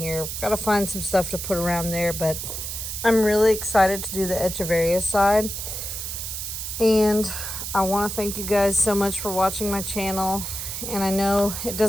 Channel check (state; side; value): noise; right; hiss, 5 dB below the sound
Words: Gotta find some stuff to put around there, but I'm really excited to do the Echeveria side. And I want to thank you guys so much for watching my channel. And I know it